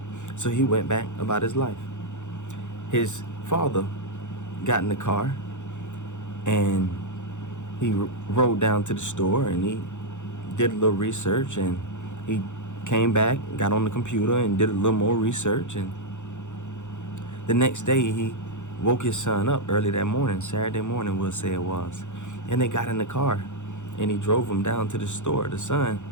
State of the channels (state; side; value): late; right; 0.85 ms